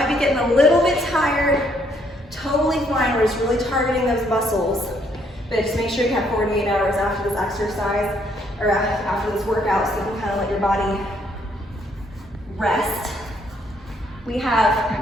be getting a little bit tired. Totally fine, we're just really targeting those muscles. But just make sure you have 48 hours after this exercise, or after this workout, so you can kind of let your body rest. We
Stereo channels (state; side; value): normal; both; correlation 0.69